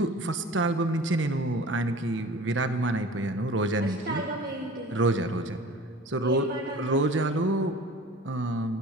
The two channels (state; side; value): normal; both; correlation 0.42